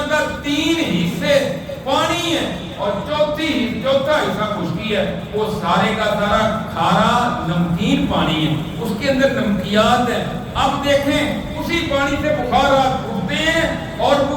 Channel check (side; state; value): both; identical; correlation 1.00